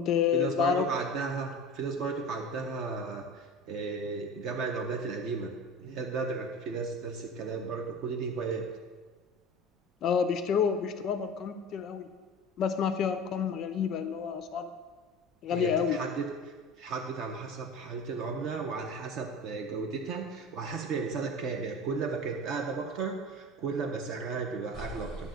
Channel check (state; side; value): normal; both; correlation 0.34